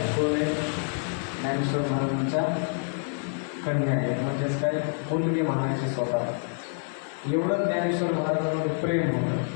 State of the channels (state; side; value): silent; right; 60 dB below the other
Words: कोण आहे? ज्ञानेश्वर महाराजांच्या कन्या आहेत. म्हणजेच काय, मुलगी म्हणायची स्वतः. एवढं ज्ञानेश्वर महाराजांवर प्रेम होतं.